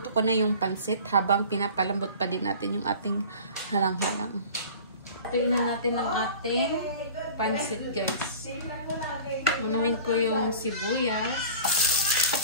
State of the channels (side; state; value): both; inverted; correlation -0.40